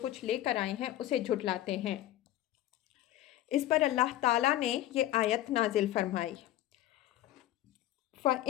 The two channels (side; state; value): right; quieter; 13.8 dB